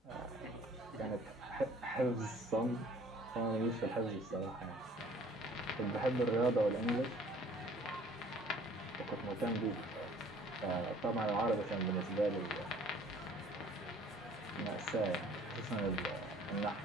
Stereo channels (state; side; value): normal; both; correlation 0.54